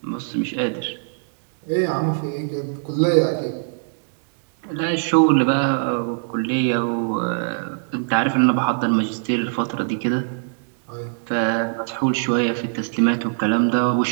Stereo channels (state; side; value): silent; left; digital silence